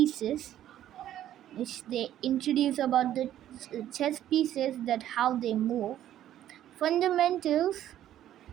which they introduce about the chess pieces, that how they move, fundamentals,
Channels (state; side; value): quieter; left; 11.9 dB